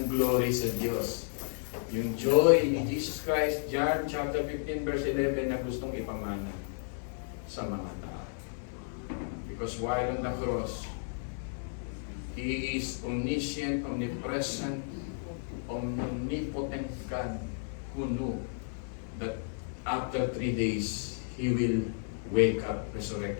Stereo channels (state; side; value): silent; right; digital silence